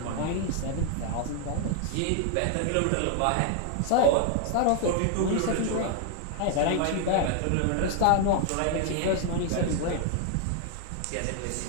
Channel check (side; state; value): both; different; correlation 0.00